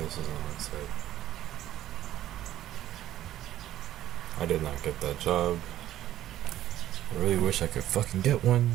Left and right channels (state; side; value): quieter; left; 13.1 dB